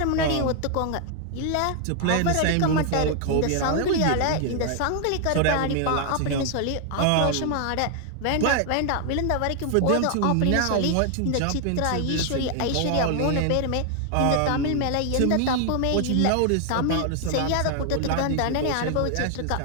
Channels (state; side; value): different; both; correlation 0.00